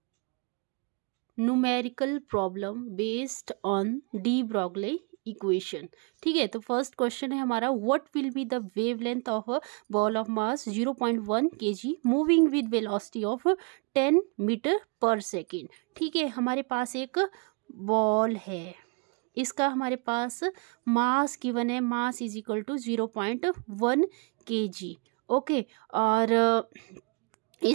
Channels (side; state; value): left; quieter; 32.7 dB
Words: numerical problem based on de Broglie equation. ठीक है, तो फर्स्ट क्वेश्चन है हमारा, what will be the wavelength of a ball of mass 0.1 kg moving with velocity of 10 metre पर सेकेंड। ठीक है, हमारे पास एक बॉल है, इसका हमारे पास मास गिवन है, mass is equal to 0.1 kg। Okay, और